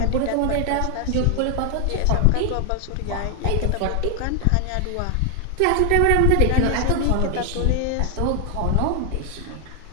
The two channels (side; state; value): both; different; correlation 0.00